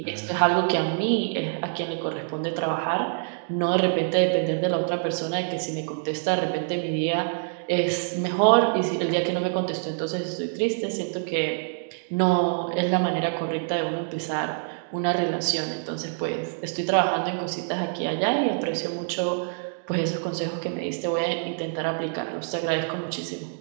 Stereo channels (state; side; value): silent; left; digital silence